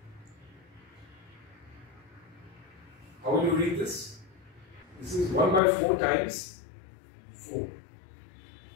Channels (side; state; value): right; drops out; at 5.6 s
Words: How will you read this? This is 1 by 4 times 4.